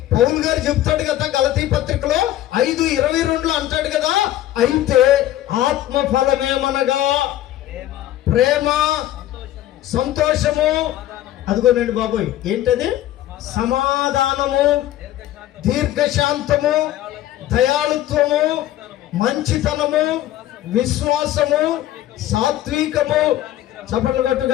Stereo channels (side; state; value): right; quieter; 13.6 dB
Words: పౌలు గారు చెప్తాడు కదా గలతీ పత్రికలో 5:22 అంటాడు కదా, అయితే ఆత్మ ఫలమేమనగా ప్రేమ, సంతోషము, అదిగోనండి బాబోయ్, ఏంటది? సమాధానము, దీర్ఘశాంతము, దయాళుత్వము, మంచితనము, విశ్వాసము, సాత్వికము. చప్పట్లు కొట్టు